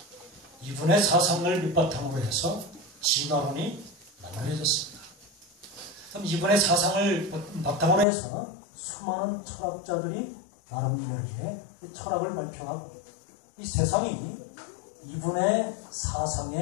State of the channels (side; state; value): right; drops out; at 8.1 s